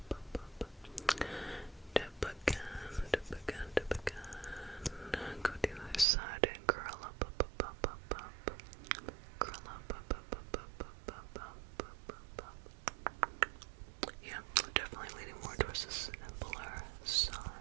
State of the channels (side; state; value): left; drops out; at 6.1 s